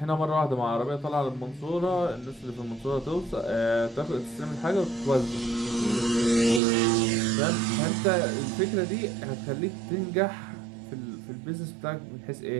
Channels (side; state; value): left; drops out; at 6.6 s